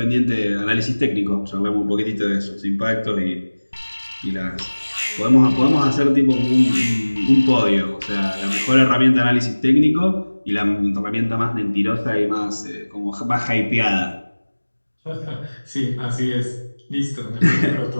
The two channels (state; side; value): inverted; both; correlation -1.00